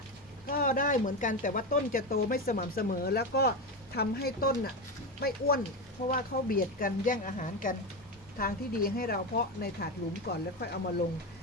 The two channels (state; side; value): normal; both; correlation 0.17